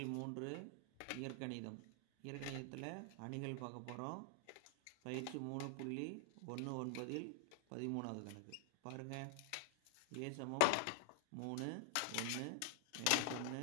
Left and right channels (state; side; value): different; both; correlation 0.00